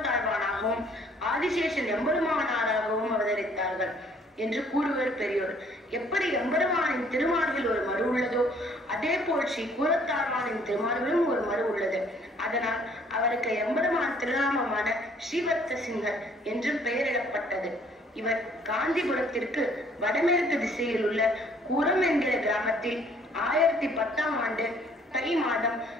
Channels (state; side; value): normal; both; correlation 0.60